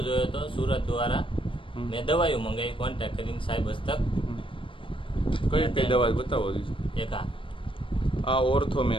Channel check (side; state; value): right; late; 0.25 ms